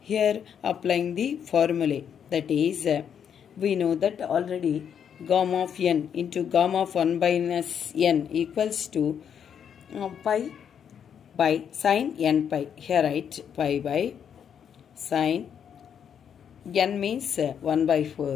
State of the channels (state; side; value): quieter; right; 8.1 dB